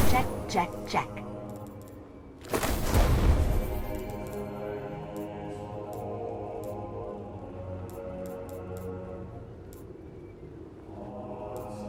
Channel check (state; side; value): identical; both; correlation 1.00